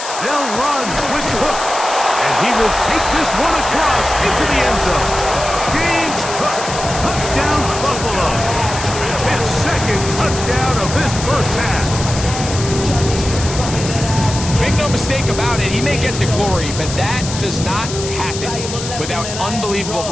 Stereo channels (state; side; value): noise; left; hiss, 8 dB below the sound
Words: They'll run with the hook, and he will take this one across into the end zone. James Cook, touchdown Buffalo. His second touchdown of this first half. Make no mistake about it, he may get the glory, but that does not happen without unbelievable